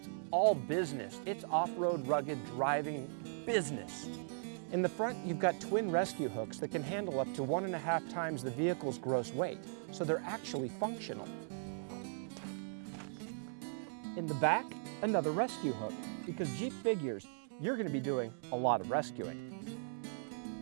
all business. It's off-road rugged driving business. In the front, you've got twin rescue hooks that can handle up to 1.5 times the vehicle's gross weight, so they're actually functional. In the back, another rescue hook, because Jeep figures you're going to be doing a lot of rescuing.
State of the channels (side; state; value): left; silent; digital silence